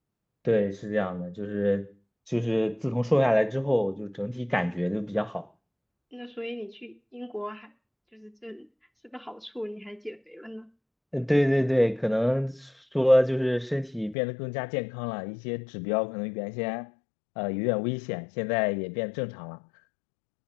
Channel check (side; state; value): right; drops out; at 14.2 s